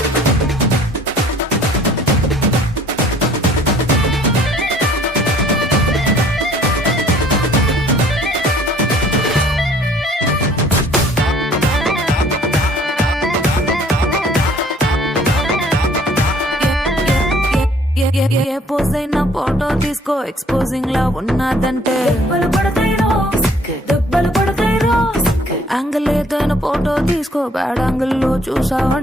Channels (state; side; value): normal; both; correlation 0.57